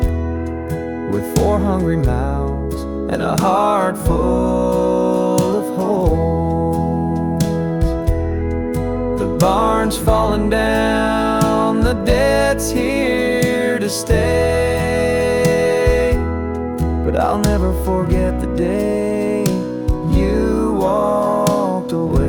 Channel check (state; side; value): identical; both; correlation 1.00